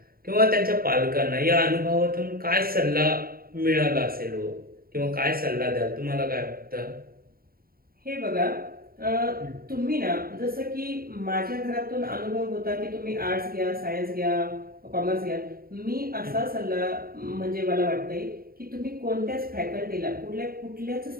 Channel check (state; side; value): late; left; 0.43 ms